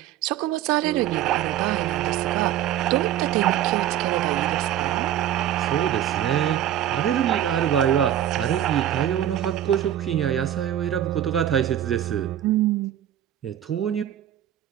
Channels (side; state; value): left; quieter; 11.3 dB